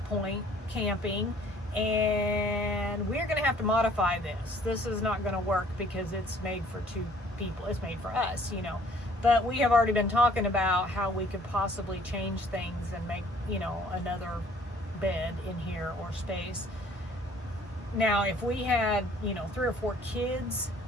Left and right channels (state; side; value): normal; both; correlation 0.57